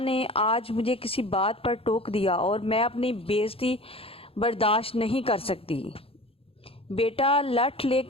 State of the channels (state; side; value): late; right; 0.27 ms